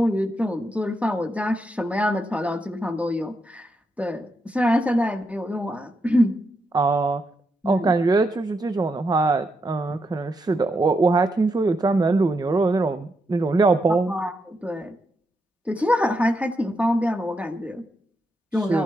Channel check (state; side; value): normal; both; correlation 0.82